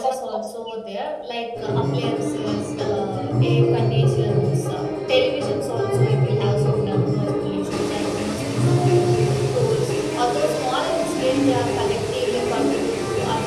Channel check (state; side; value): identical; both; correlation 1.00